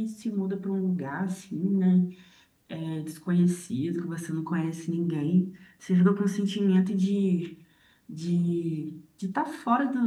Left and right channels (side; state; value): both; identical; correlation 1.00